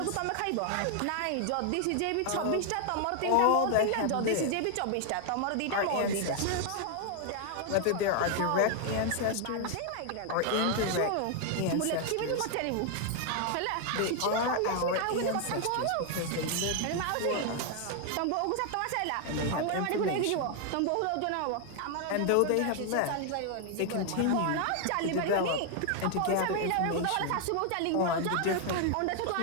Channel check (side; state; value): both; different; correlation 0.00